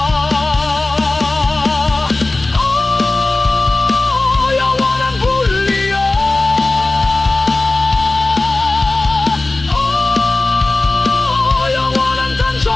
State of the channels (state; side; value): quieter; right; 3.0 dB